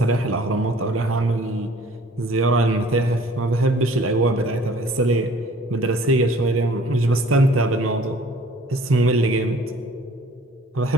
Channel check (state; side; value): normal; both; correlation 0.52